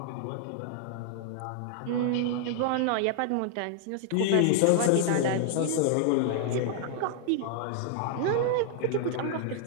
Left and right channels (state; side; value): different; both; correlation -0.01